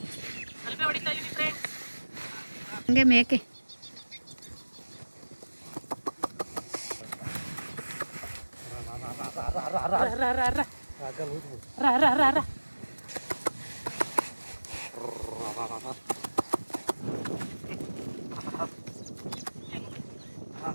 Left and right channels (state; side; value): inverted; both; correlation -1.00